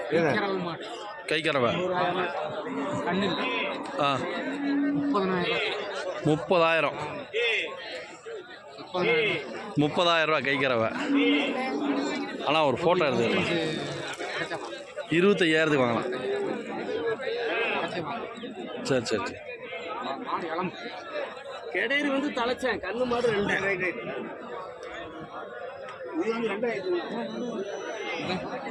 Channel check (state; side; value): identical; both; correlation 1.00